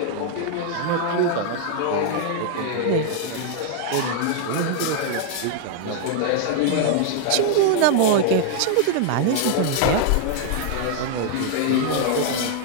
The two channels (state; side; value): different; both; correlation 0.00